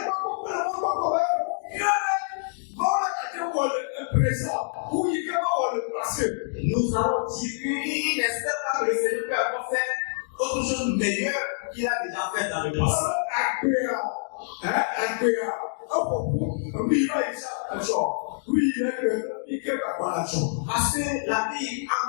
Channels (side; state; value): right; silent; digital silence